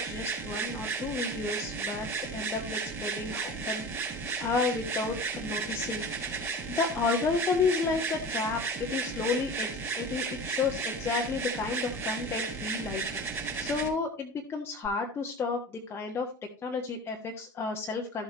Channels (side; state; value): both; normal; correlation 0.35